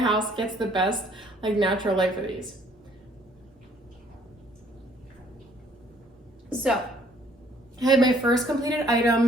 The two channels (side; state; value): both; normal; correlation 0.61